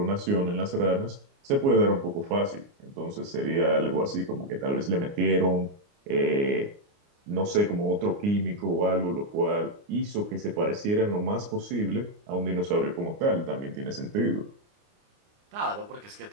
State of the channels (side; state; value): left; late; 29 ms